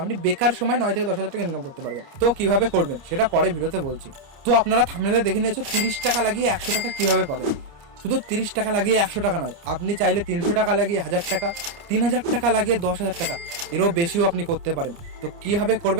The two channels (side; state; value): left; late; 29 ms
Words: আপনি বেকার সময় 9 থেকে 10 হাজার টাকা ইনকাম করতে পারবেন। তো কিভাবে করবেন সেটা পরে ভিডিওতে বলছি। তো আপনারা থাম্বনেলে দেখে নিয়েছো 30 টাকা লাগিয়ে 100 টাকা কিভাবে পাবেন। শুধু 30 টাকা লাগিয়ে 100 টাকা নয়, আপনি চাইলে 300 টাকা লাগিয়ে 1000 টাকা, 3000 টাকা লাগিয়ে 10,000 টাকা, এরও বেশিও আপনি করতে পারেন। তো কিভাবে